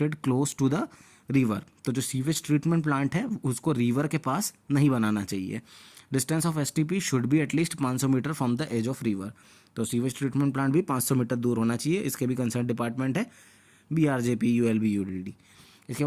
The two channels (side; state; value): both; identical; correlation 1.00